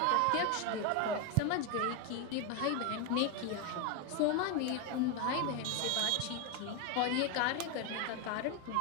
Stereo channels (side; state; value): both; different; correlation 0.01